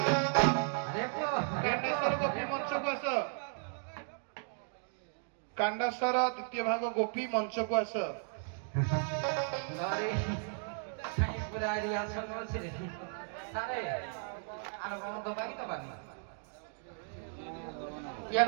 কান্ডাসর দ্বিতীয় ভাগ গোপী মঞ্চকু আস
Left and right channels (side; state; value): left; silent; 54 dB below the other